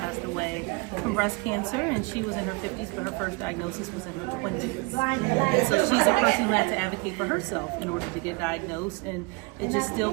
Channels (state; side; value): quieter; left; 27.6 dB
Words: away from breast cancer, and she was in her 50s, but her first diagnosis was in her 20s. And so she's a person who had to advocate for herself in order to get diagnosed, and it just still